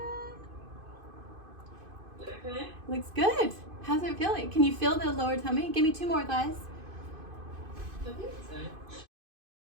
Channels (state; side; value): late; left; 2.5 ms